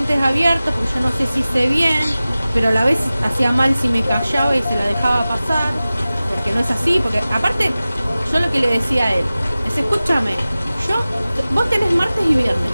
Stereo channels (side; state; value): both; inverted; correlation -0.97